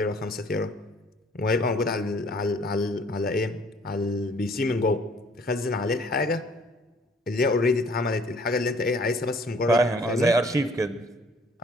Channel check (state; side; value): normal; both; correlation 0.57